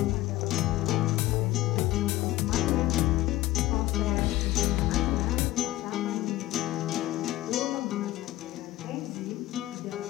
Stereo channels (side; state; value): right; quieter; 16.5 dB